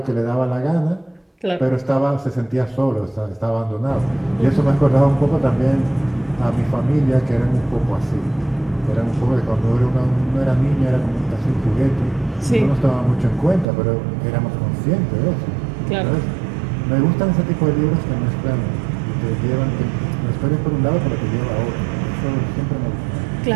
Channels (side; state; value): left; drops out; at 13.7 s